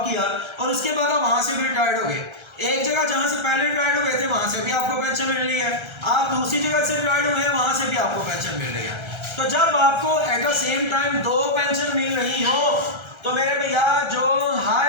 किया और उसके बाद आप वहां से भी रिटायर्ड हो गए। एक जगह जहां से पहले रिटायर्ड हो गए थे वहां से भी आपको पेंशन मिल रही है, आप दूसरी जगह से रिटायर्ड हुए हैं वहां से भी आपको पेंशन मिल रही है। तो जब आपको at the same time 2 pension मिल रही हो तो मेरे भैया जो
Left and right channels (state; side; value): late; left; 1.3 ms